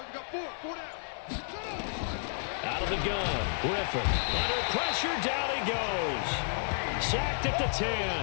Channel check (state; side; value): silent; right; 57 dB below the other